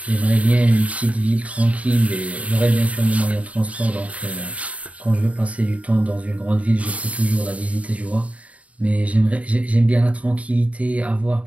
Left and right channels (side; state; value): left; late; 0.067 ms